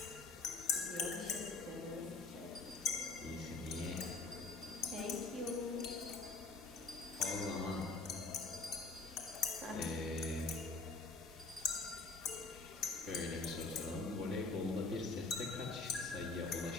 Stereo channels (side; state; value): right; quieter; 3.8 dB